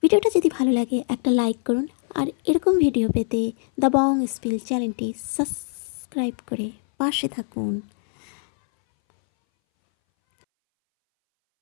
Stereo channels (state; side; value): silent; right; 62 dB below the other